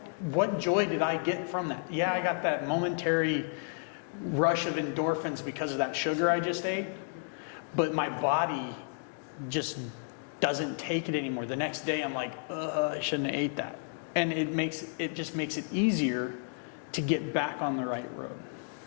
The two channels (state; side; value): silent; right; 57 dB below the other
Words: What joy did I get from that? Yeah, I got that momentary rush of endorphins because of that sugar I just ate, but my body just doesn't take it anymore. The next day I'm like, I shouldn't have ate that. And it just makes it easier to get back on the right road.